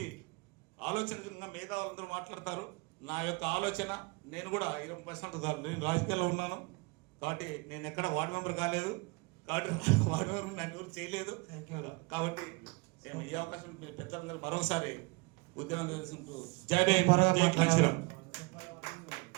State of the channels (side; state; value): left; quieter; 27.9 dB